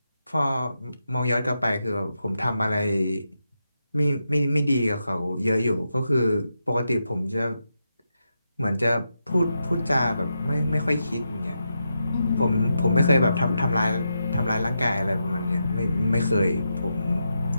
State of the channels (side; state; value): both; inverted; correlation -0.86